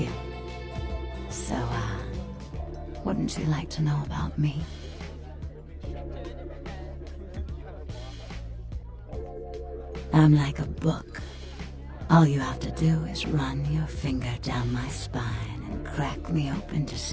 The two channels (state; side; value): identical; both; correlation 1.00